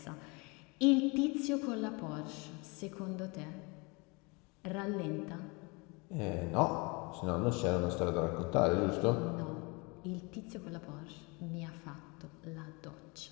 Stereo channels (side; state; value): right; quieter; 28.4 dB